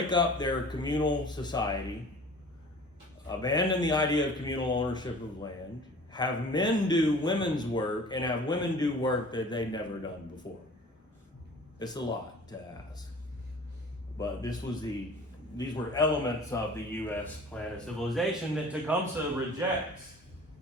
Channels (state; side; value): normal; both; correlation 0.45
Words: up their communal society, abandon the idea of communal ownership of land, have men do women's work, and have women do work that they'd never done before. It's a lot to ask. But these were elements of the U.S. plan of civilization that Tecumseh rejects.